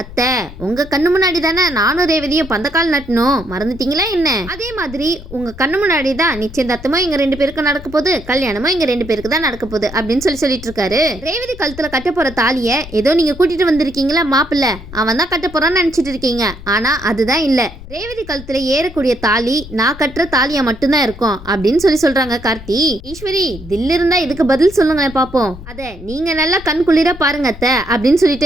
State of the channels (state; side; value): noise; left; rumble, 15 dB below the sound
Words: அத்தை உங்க கண்ணு முன்னாடி தானே நானும் ரேவதியும் பந்தக்கால் நட்டணும், மறந்துட்டீங்களா என்ன? அதே மாதிரி உங்க கண்ணு முன்னாடி தான் நிச்சயதார்த்தமும் எங்க ரெண்டு பேருக்கு நடக்க போகுது, கல்யாணமும் எங்க ரெண்டு பேருக்கு தான் நடக்க போகுது அப்படின்னு சொல்லிட்டு இருக்காரு. ரேவதி கழுத்துல கட்ட போற தாலிய ஏதோ நீங்க கூட்டிட்டு வந்திருக்கீங்களா மாப்பிள்ள, அவன் தான் கட்ட போறான்னு நினைச்சிட்டு இருக்கீங்க, ஆனா அதுதான் இல்ல, ரேவதி கழுத்துல ஏறக்கூடிய தாலி நான் கட்டுற தாலியா மட்டும்தான் இருக்கும் அப்படின்னு சொல்றாங்க கார்த்தி. ஈஸ்வரி தில் இருந்தா இதுக்கு பதில் சொல்லுங்களேன் பாப்போம், அத நீங்க நல்லா கண் குளிர பாருங்க அத்தை அப்படின்னு